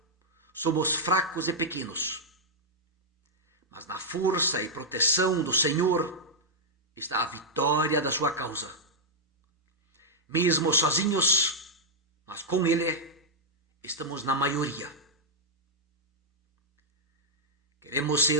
somos fracos e pequenos. Mas na força e proteção do Senhor está a vitória da sua causa. Mesmo sozinhos, mas com Ele, estamos na maioria. Queremos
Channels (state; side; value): normal; both; correlation -0.06